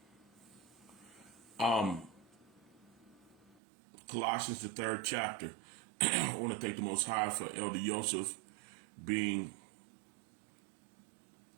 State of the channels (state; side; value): drops out; left; at 3.6 s